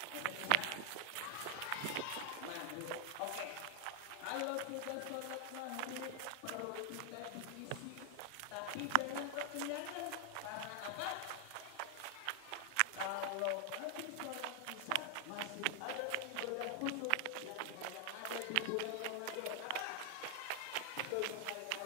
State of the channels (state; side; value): different; both; correlation 0.00